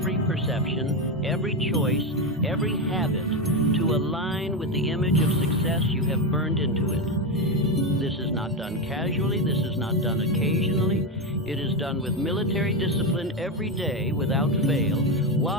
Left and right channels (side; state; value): both; normal; correlation 0.12